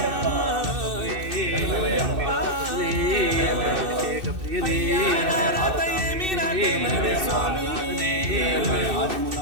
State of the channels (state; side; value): late; left; 2.6 ms